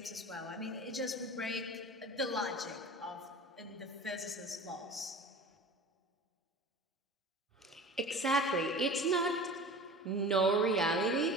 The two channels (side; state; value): both; normal; correlation 0.38